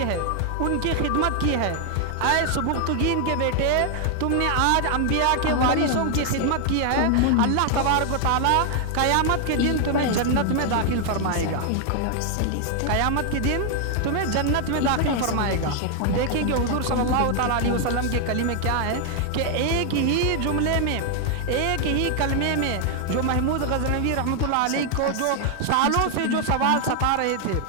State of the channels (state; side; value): different; both; correlation 0.00